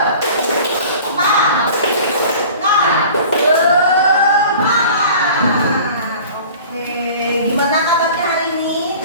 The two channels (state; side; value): inverted; both; correlation -0.43